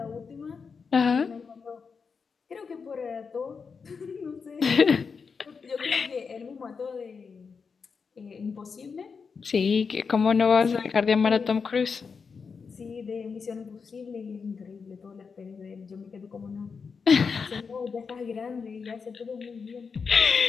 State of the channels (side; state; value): right; quieter; 5.5 dB